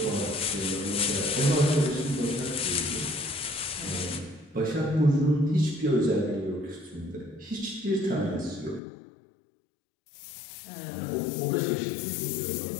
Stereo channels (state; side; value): drops out; right; at 8.8 s